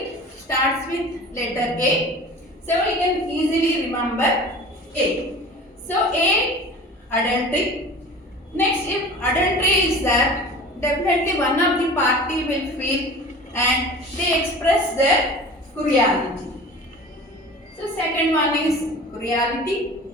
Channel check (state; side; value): normal; both; correlation 0.39